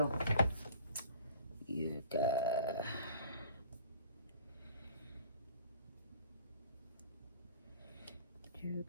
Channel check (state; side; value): inverted; both; correlation -0.48